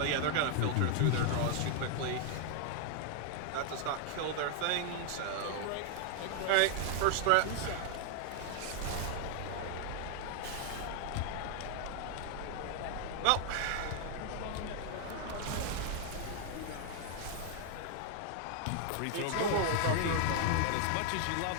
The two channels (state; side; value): different; both; correlation 0.00